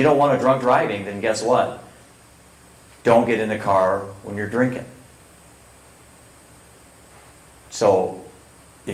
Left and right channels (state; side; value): identical; both; correlation 1.00